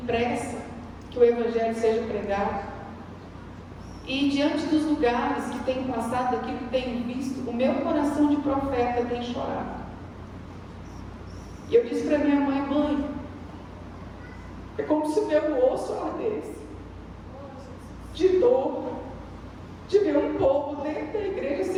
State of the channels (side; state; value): both; identical; correlation 1.00